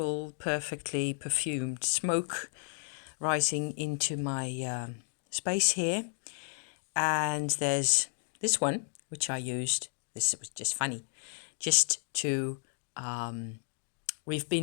perfectly perfumed smoke rising into my space here. And there's this one, which I used. This was just funny, just to. We've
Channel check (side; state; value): right; silent; digital silence